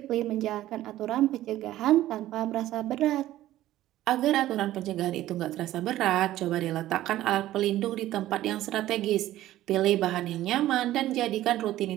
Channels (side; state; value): left; quieter; 14.4 dB